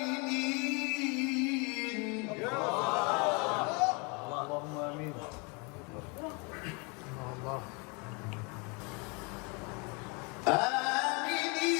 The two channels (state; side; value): quieter; right; 31.4 dB